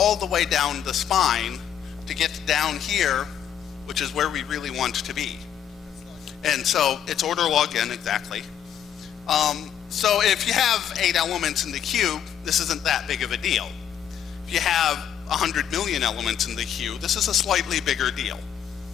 the way down the spine to get down here, which is where we really want to be. And so it's order log n exactly. So if you have 8 elements in the cube, this isn't that big of a deal. If you have 100 million elements in the queue, this is a slightly bigger deal.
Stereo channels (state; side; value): quieter; right; 9.3 dB